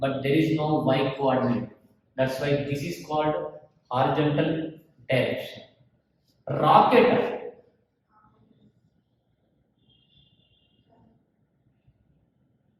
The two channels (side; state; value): both; identical; correlation 1.00